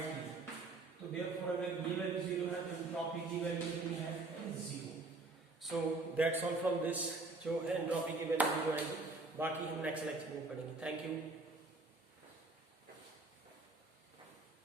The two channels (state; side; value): quieter; left; 3.4 dB